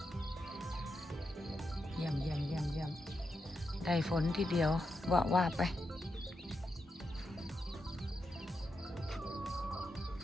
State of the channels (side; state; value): both; normal; correlation 0.86